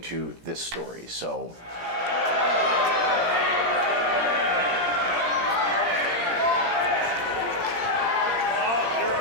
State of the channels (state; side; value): late; left; 17 ms